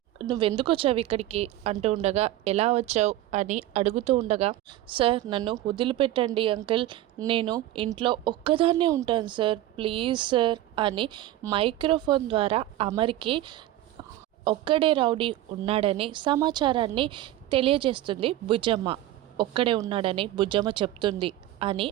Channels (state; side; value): quieter; left; 14.4 dB